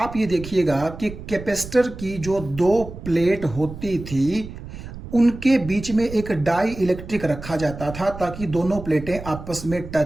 ये देखिएगा कि कैपेसिटर की जो 2 प्लेट होती थी उनके बीच में एक डाई इलेक्ट्रिक रखा जाता था ताकि दोनों प्लेटें आपस में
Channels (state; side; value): noise; right; rumble, 12 dB below the sound